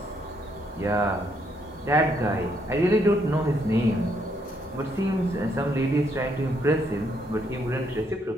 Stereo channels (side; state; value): both; normal; correlation 0.73